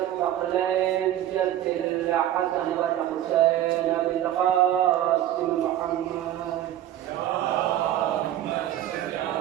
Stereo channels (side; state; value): left; quieter; 12.6 dB